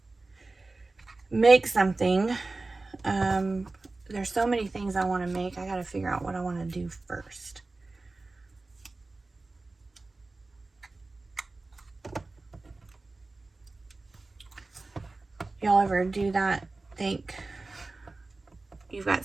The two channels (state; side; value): quieter; left; 3.4 dB